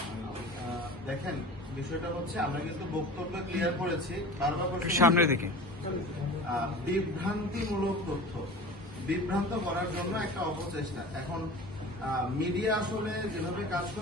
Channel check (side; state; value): both; normal; correlation 0.37